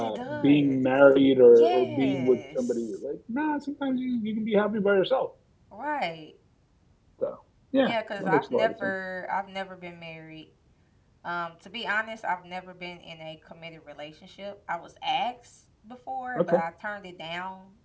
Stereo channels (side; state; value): both; identical; correlation 1.00